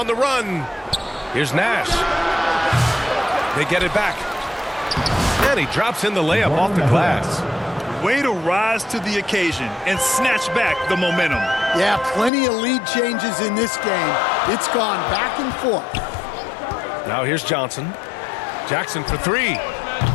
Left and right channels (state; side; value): drops out; right; at 12.3 s